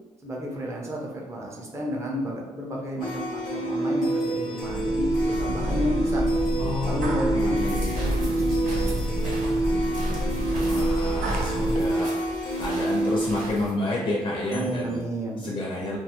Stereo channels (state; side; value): normal; both; correlation 0.79